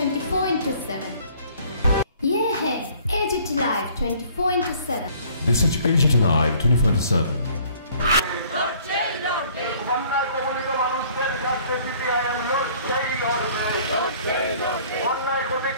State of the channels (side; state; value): both; inverted; correlation -0.56